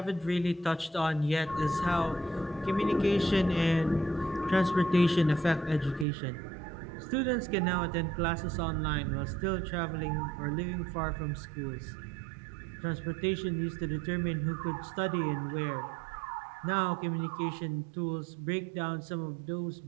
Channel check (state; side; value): drops out; left; at 6.1 s